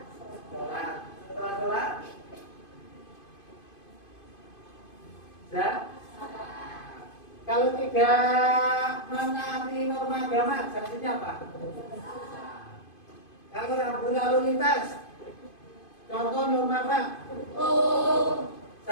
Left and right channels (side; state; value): right; late; 2.5 ms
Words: Setelah sholat, kalau tidak menaati norma agama, sanksinya apa? Kalau rambu lalu lintas, contoh norma apa?